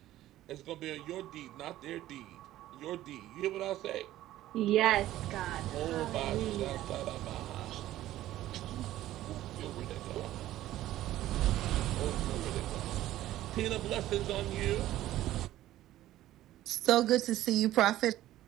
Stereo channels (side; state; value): left; quieter; 14.3 dB